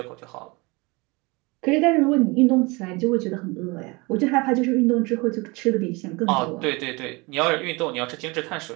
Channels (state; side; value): quieter; left; 25.8 dB